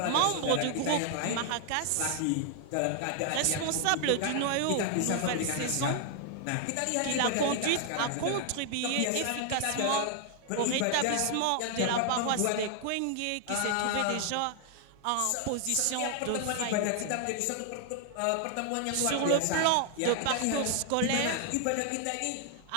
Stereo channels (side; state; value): both; different; correlation 0.00